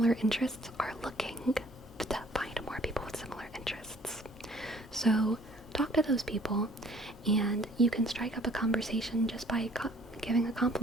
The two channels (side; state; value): both; normal; correlation 0.57